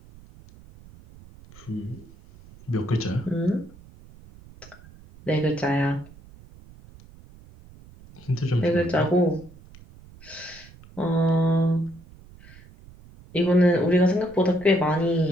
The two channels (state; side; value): noise; right; rumble, 22 dB below the sound